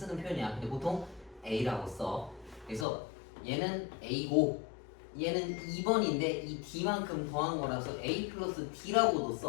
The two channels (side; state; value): right; drops out; at 2.9 s